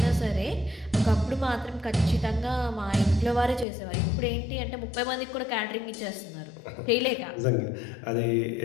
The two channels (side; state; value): right; drops out; at 3.7 s